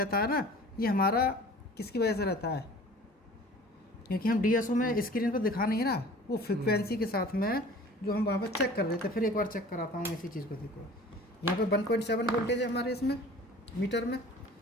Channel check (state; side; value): normal; both; correlation 0.45